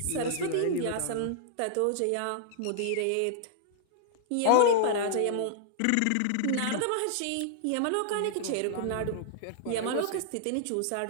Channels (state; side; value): different; both; correlation -0.01